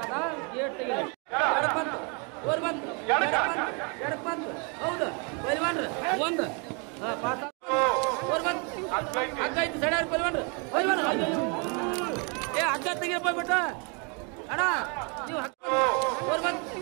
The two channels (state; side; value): quieter; left; 34.6 dB